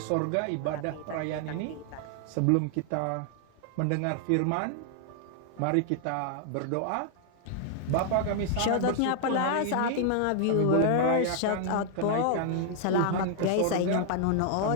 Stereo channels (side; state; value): both; different; correlation 0.00